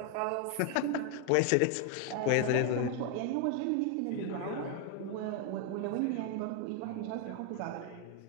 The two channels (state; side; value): different; both; correlation 0.01